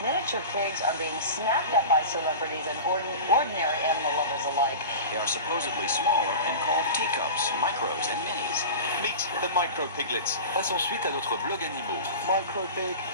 pigs are being snapped up by celebrities and ordinary animal lovers alike. They are supposedly smaller and called teacups, micros, and minis. Meet the micro piglets. Passe ensuite à notre blog animaux. Micro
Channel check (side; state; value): both; inverted; correlation -0.31